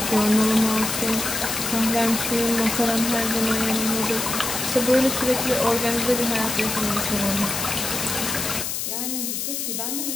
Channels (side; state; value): left; noise; hiss, 3 dB below the sound